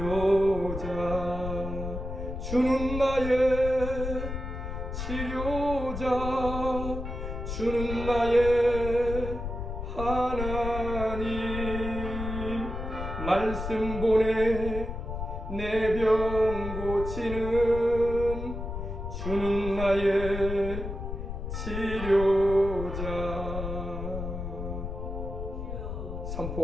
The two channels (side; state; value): left; noise; rumble, 6 dB below the sound